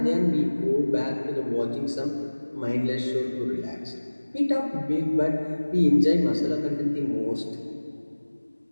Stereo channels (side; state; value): both; inverted; correlation -1.00